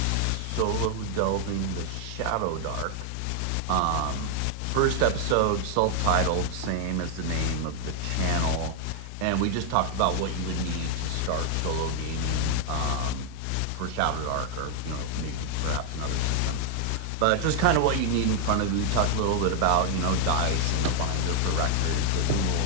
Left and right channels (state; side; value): different; both; correlation 0.00